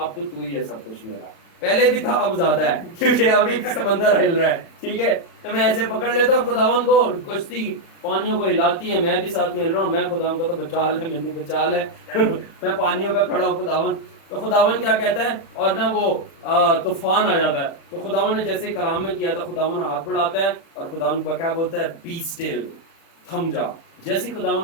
تو ہی ہے سب کچھ میرا, پہلے بھی تھا اب زیادہ ہے کیونکہ ابھی سمندر ہل رہا ہے, ٹھیک ہے. تو میں ایسے پکڑ لیتا ہوں خداوند کو, کشتی پانیوں کو ہلاتی ہے, میں بھی ساتھ میں ہل رہا ہوں, میں خداوند کو تو بچا لے, مجھے بچا لے میں پانیوں پہ کھڑا ہوں خداوند. تو خداوند کیا کہتا ہے, اور نا وہ طوفان آ جاتا ہے, تو خداوند نے جیسے کلام میں کیا تھا, خداوند ہاتھ بڑھاتا ہے اور خداوند کیا بولتا ہے, بی اسٹل, تھم جا. جیسے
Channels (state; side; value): late; right; 36 ms